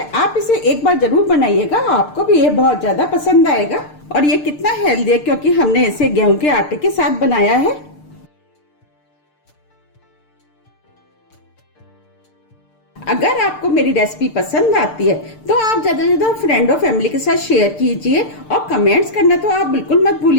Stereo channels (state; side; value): late; right; 6.7 ms